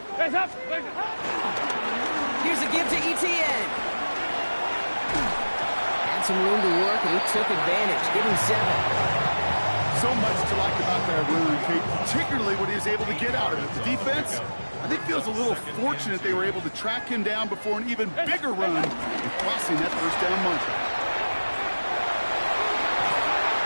Here's a give to Etienne. Had some room to work, and he took advantage. Give him 7. So much to like about that run, Kate, particularly when he was able to get out of it. The defense, I think, feels a little fortunate they were able to track him down before an even bigger run and crossing that 1st down marker.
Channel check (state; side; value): inverted; both; correlation -1.00